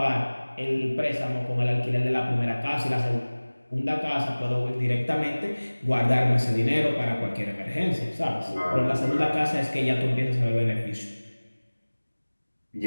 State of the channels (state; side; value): inverted; both; correlation -1.00